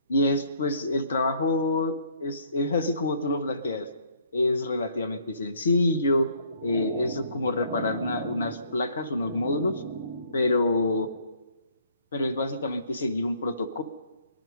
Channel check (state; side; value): inverted; both; correlation -0.62